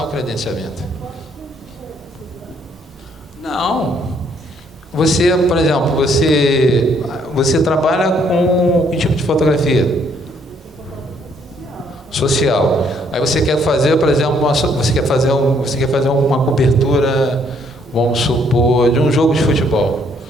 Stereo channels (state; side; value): normal; both; correlation 0.67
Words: o credenciamento. Não. Você, por exemplo, você trabalha com que tipo de fotografia? Social. Aí você quer fazer, por exemplo, você quer fazer uma cobertura, vamos supor, de um jogo de futebol.